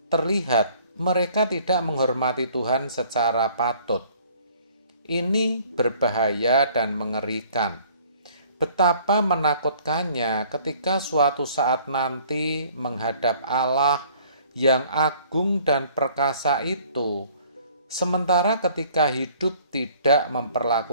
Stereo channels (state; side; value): inverted; both; correlation -0.56